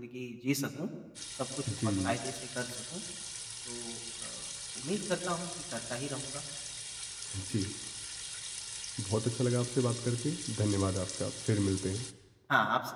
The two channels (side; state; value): both; identical; correlation 1.00